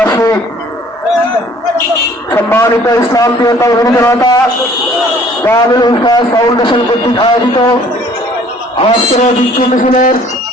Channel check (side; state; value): both; normal; correlation 0.55